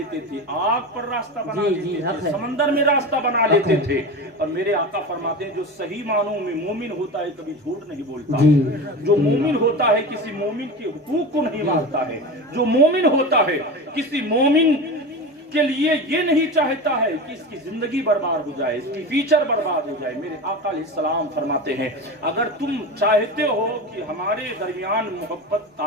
تھے، آگ پر راستہ بنا لیتے تھے، سمندر میں راستہ بنا لیتے تھے۔ اور میرے آقا فرماتے ہیں جو صحیح معنوں میں مومن ہوتا ہے کبھی جھوٹ نہیں بولتا، جو مومن ہوتا ہے کسی مومن کے حقوق کو نہیں مانتا ہے، جو مومن ہوتا ہے کسی مومن کے لیے یہ نہیں چاہتا ہے کہ اس کی زندگی برباد ہو جائے، اس کی فیوچر برباد ہو جائے۔ میرے آقا علیہ السلام فرماتے ہیں اگر تم چاہتے ہو کہ ہمارے درمیان محبت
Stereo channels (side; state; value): both; normal; correlation 0.27